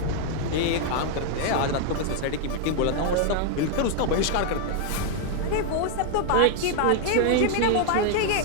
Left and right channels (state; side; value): different; both; correlation 0.00